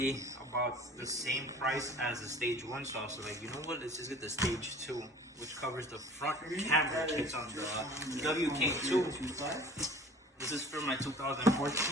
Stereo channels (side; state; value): both; normal; correlation 0.45